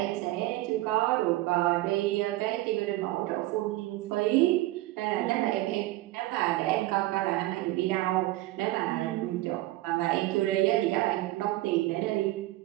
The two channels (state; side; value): quieter; left; 17.5 dB